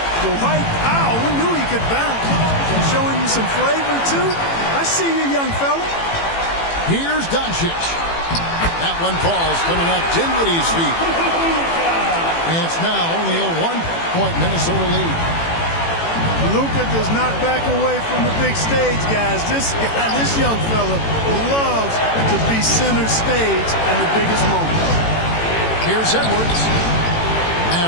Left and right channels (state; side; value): late; right; 18 ms